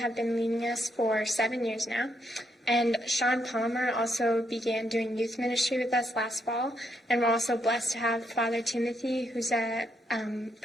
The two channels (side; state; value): both; normal; correlation 0.77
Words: been leading us for 7 years now. And Sean Palmer also began doing youth ministry with us last fall. And we're also blessed to have Father Timothy, who's a